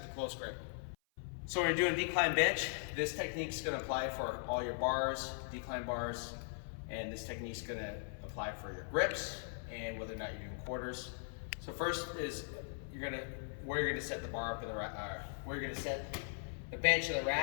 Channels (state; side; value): silent; right; 51 dB below the other